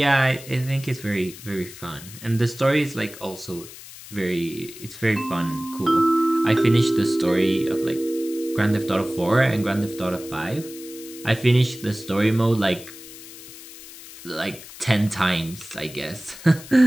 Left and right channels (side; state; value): left; noise; hiss, 16 dB below the sound